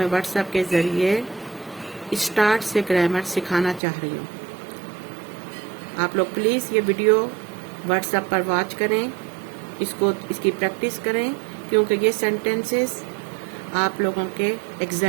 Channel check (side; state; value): left; drops out; at 3.8 s